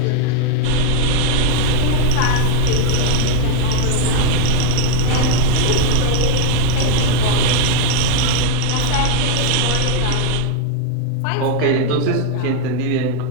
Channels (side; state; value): both; different; correlation 0.01